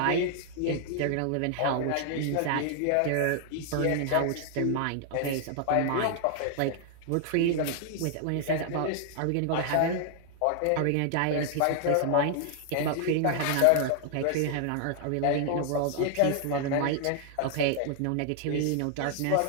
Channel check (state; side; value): different; both; correlation 0.00